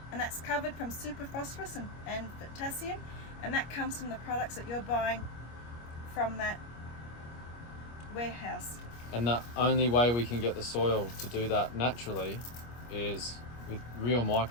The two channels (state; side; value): late; right; 25 ms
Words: and that's covered from superphosphorus and potassium, and that comes from the products that you're buying from that warehouse. And the only way we can get the soil to do that naturally is with real